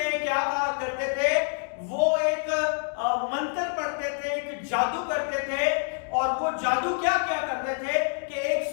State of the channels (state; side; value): silent; right; 58 dB below the other